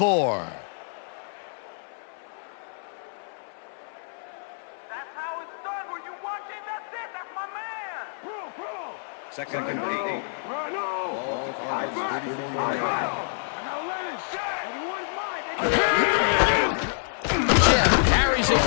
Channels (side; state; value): right; silent; 60 dB below the other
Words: Second and 8. Chip carries it